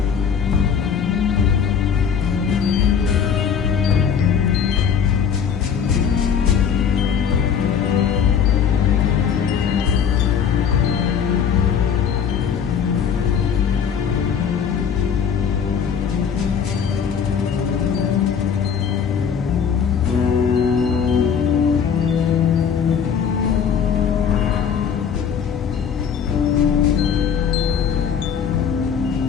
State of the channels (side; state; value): right; quieter; 7.3 dB